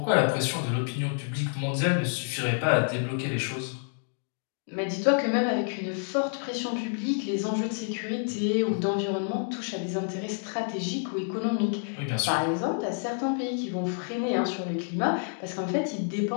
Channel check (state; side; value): silent; right; 59 dB below the other